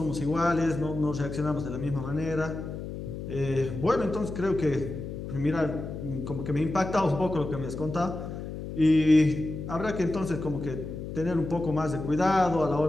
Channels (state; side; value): noise; left; hum, 8 dB below the sound